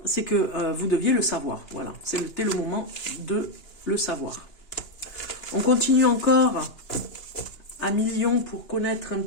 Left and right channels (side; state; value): right; late; 2.9 ms